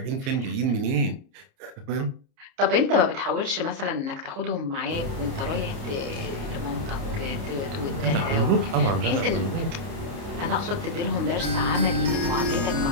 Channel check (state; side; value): late; left; 29 ms